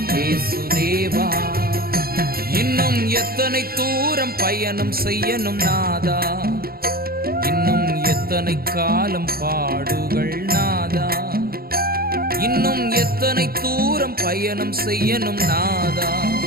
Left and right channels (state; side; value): late; left; 0.44 ms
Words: இயேசு தேவா. இன்னும் எத்தனை தூரம் பயணம் செய்யணும் நாதா, இன்னும் எத்தனை எத்தனை காலம் பாடுகள் நாதா, இன்னும் எத்தனை தூரம் பயணம் செய்யணும் நாதா,